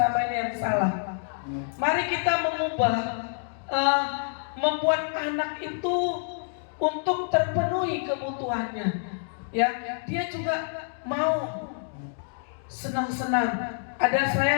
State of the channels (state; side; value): silent; right; digital silence